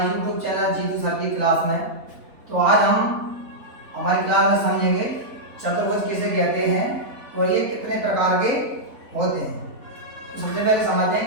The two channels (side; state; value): left; late; 3.9 ms